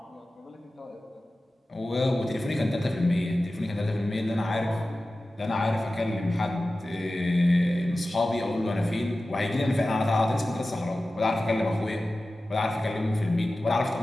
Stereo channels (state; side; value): normal; both; correlation 0.95